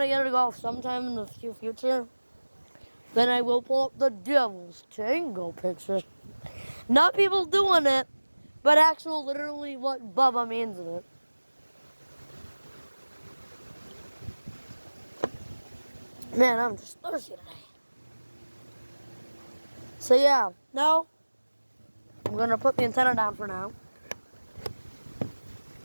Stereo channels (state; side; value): inverted; both; correlation -1.00